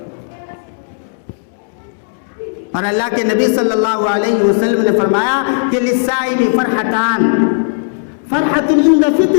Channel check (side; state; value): right; silent; digital silence